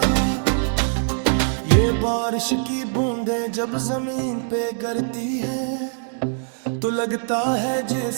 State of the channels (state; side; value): silent; left; digital silence